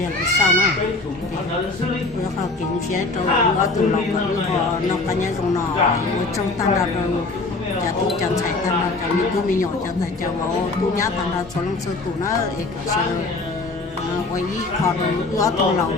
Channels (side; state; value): right; quieter; 3.4 dB